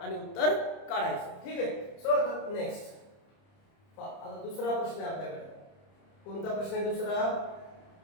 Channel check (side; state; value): right; late; 30 ms